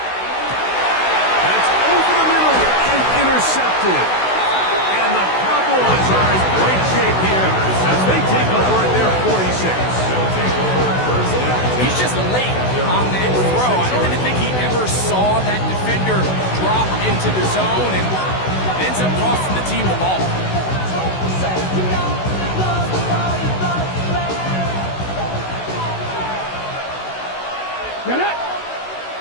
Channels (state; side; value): late; right; 16 ms